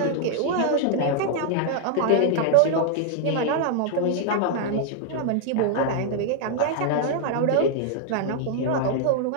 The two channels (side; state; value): both; different; correlation 0.00